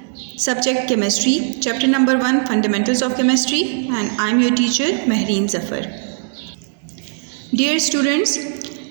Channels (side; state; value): left; silent; digital silence